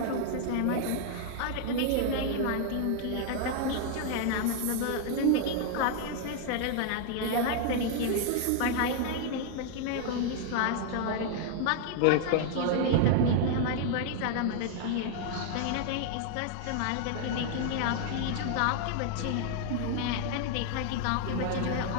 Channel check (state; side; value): different; both; correlation 0.00